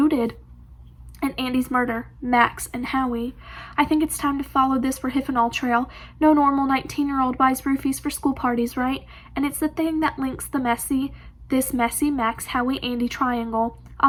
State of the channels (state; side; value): identical; both; correlation 1.00